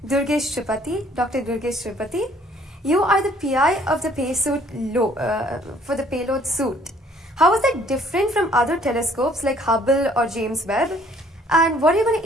Durgesh Tripathi, Dr. Durgesh Tripathi. You are the PI of the for the payload suit. How is that different from other telescopes like Hubble or James Webb? And what are you going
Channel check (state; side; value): normal; both; correlation 0.60